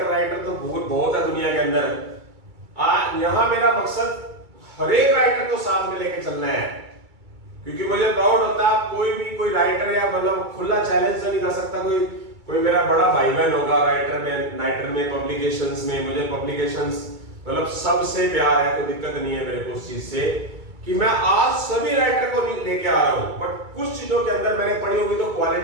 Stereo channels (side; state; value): left; late; 2.3 ms